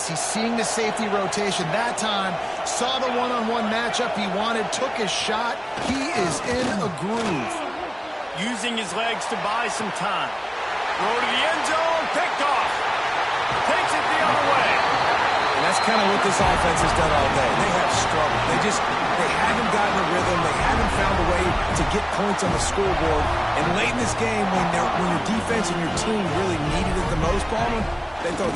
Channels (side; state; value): both; identical; correlation 1.00